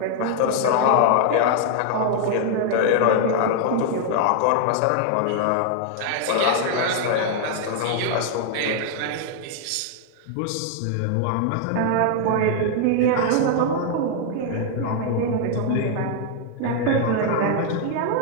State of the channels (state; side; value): different; both; correlation 0.00